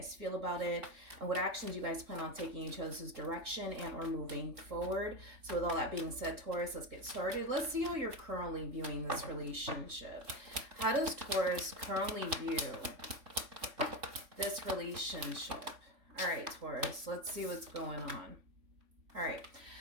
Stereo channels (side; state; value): left; late; 3.5 ms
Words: feel about it, and what actions you guys plan on taking each other's direction and or moving forward. So, with all that being said, Taurus, let's get started. Let's see how you're currently viewing this relationship. How does Taurus currently view this relationship? All right, Taurus, let's see what's going on. All right,